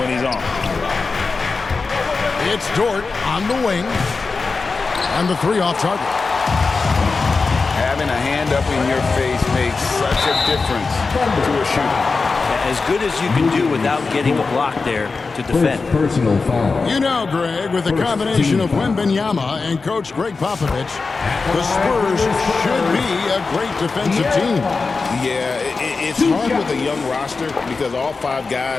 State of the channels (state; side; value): quieter; right; 4.3 dB